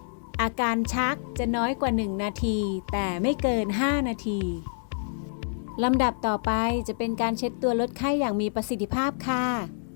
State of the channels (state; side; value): silent; right; 60 dB below the other